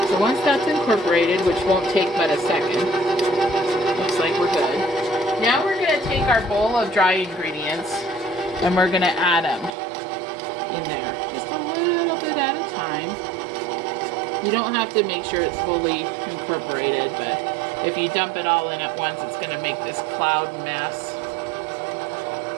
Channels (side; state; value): left; drops out; at 9.8 s